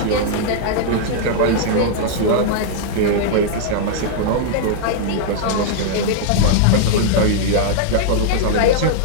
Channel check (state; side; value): different; both; correlation -0.01